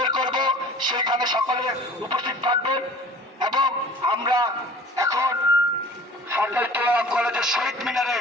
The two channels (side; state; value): both; normal; correlation 0.45